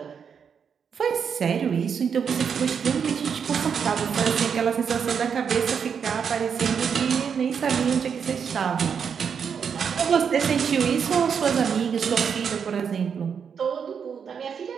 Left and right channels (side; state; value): left; quieter; 6.9 dB